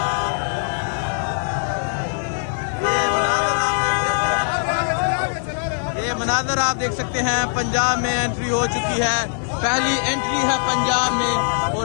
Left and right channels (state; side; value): silent; right; 65 dB below the other